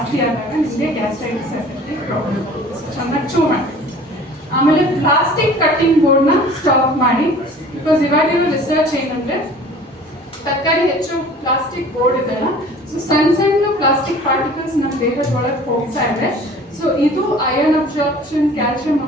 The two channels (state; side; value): normal; both; correlation 0.46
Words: ಆದಾಗ ನಿಮಗೆ ಗ್ಯಾಸ್ಟ್ರೈಟಿಸ್ ಆಸಿಡಿಟಿ ಪ್ರಾಬ್ಲಮ್. ಚೆನ್ನಾಗಿ ಚೂ ಮಾಡಿ. ಆಮೇಲೆ ಪ್ಲಾಸ್ಟಿಕ್ ಕಟ್ಟಿಂಗ್ ಬೋರ್ಡ್ನ ಸ್ಟಾಪ್ ಮಾಡಿ. ಬಿಕಾಸ್ ಇವಾಗಿರೋ ರಿಸರ್ಚ್ ಏನಂದ್ರೆ, ತರಕಾರಿ ಹೆಚ್ಚು ಪ್ಲಾಸ್ಟಿಕ್ ಬೋರ್ಡ್ ಇದೆಲ್ಲ, ಸೊ ಸಣ್ಣ ಪ್ಲಾಸ್ಟಿಕ್ ಪಾರ್ಟಿಕಲ್ಸ್ ನಮ್ಮ ದೇಹದ ಒಳಗೆ ಹೋಗ್ತಾ ಇದೆ. ಸೊ ಸೊ ಇದು iron absorption, calcium